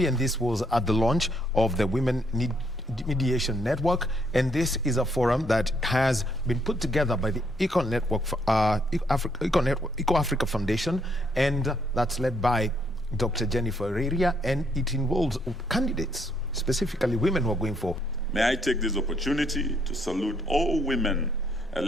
and this was at the launch of the Women Mediation Network, and this is a forum that has been put together by the Eco Africa Foundation, and that's led by Dr. Jennifer Reria, and it involves candidates, specifically women who are going for. May I take this opportunity to salute all women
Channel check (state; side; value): normal; both; correlation 0.72